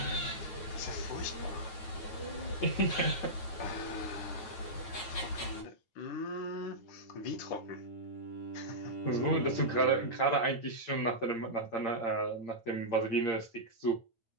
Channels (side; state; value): right; late; 9.3 ms